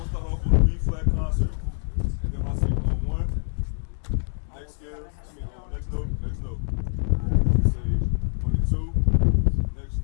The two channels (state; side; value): silent; right; digital silence